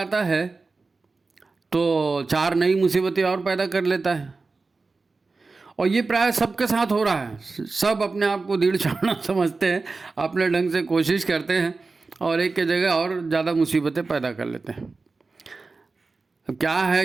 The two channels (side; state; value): left; quieter; 3.9 dB